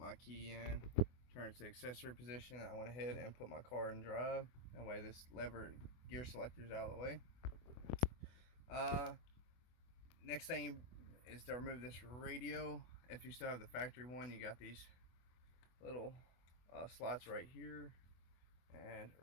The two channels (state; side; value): late; right; 24 ms